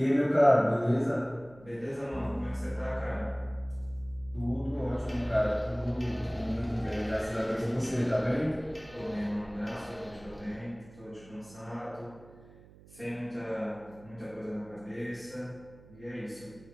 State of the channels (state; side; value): noise; right; hum, 22 dB below the sound